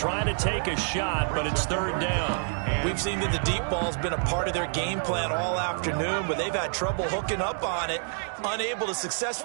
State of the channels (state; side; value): silent; left; 59 dB below the other